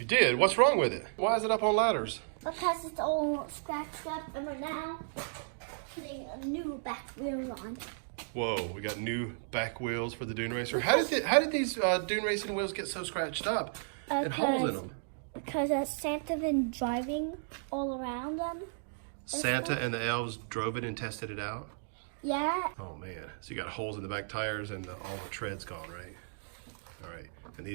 did? What's wrong with it? Why is it up on ladders? Because it's all scratched up, and we're now putting a new back wheel on. Whoa, we got new back wheels for the Dune Racer. How did these Dune Racing wheels get so scratched up and holes in them? Because Santa been driving all around them. Santa and the elves drove it and tested it out? Yeah. Oh man, so you got holes in the back tires and all the tread's gone, right? All right, and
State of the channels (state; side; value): silent; left; digital silence